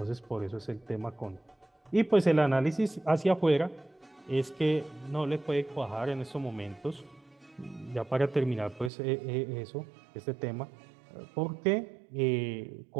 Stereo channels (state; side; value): drops out; left; at 8.9 s